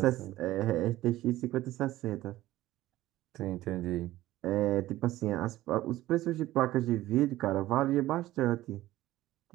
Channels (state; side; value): quieter; left; 15.8 dB